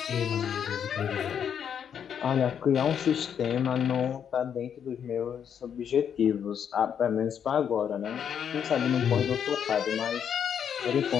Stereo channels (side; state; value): right; quieter; 8.2 dB